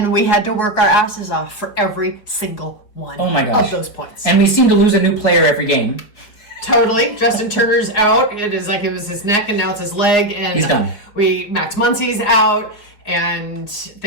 we had to work our asses off for every single one of those points. And we seem to lose a new player every game. Totally. Justin Turner's out. It was his neck, and now it's his leg. And he's done. Max Muncy's out. And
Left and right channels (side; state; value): right; late; 4.9 ms